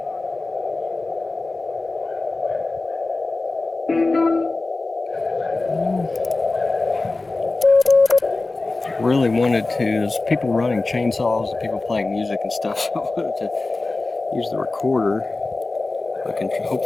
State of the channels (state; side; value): quieter; right; 3.3 dB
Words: Really wanted to, there's people running chainsaws and people playing music and stuff, so I wanted to use the recorder. I can